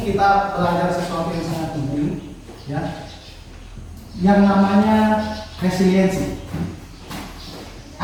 kita belajar sesuatu yang sangat penting, ya. Yang namanya resiliensi.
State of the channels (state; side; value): identical; both; correlation 1.00